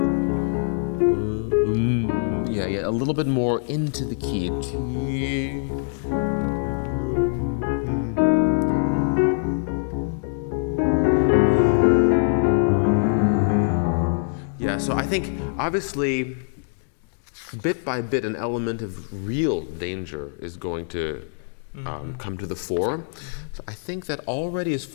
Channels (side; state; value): right; silent; digital silence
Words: Yeah, a little bit more into the key. So I think, obviously, bit by bit, an element of real danger is going to come to the fore. So I think that already is